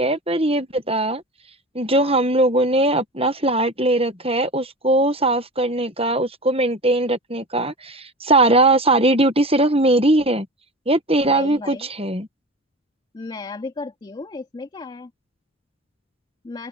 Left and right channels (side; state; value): both; normal; correlation 0.31